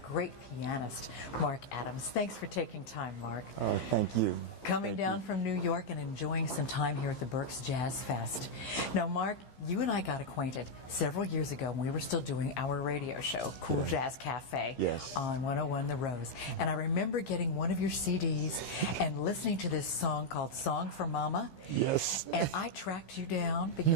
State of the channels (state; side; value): late; right; 15 ms